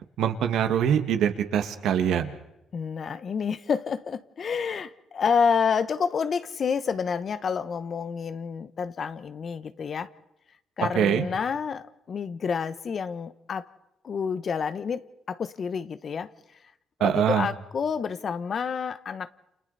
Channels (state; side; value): normal; both; correlation 0.69